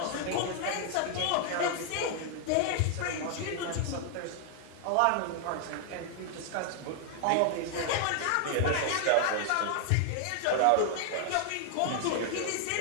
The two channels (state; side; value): different; both; correlation 0.00